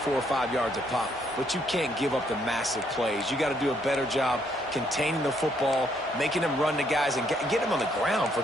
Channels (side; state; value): both; normal; correlation 0.71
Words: 5 yards a pop. But you can't give up the massive plays. You got to do a better job containing the football, making them run to guys, and get them on the ground. For